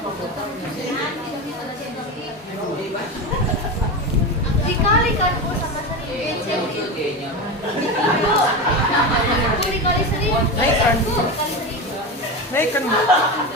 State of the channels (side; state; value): both; normal; correlation 0.21